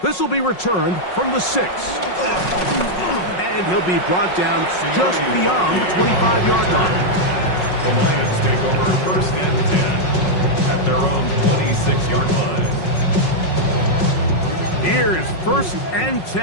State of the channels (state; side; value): late; right; 5.5 ms